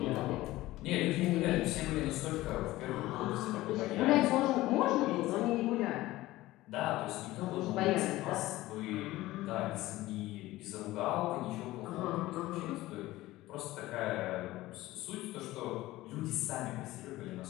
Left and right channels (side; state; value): right; quieter; 17.4 dB